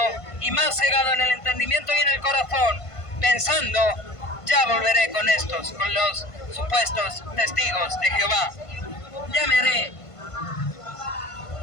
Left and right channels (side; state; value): right; late; 1.5 ms